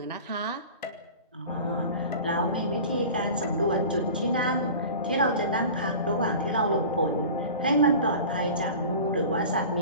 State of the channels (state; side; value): inverted; both; correlation -0.38